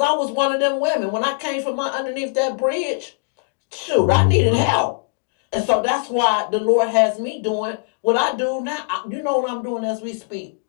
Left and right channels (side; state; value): right; silent; digital silence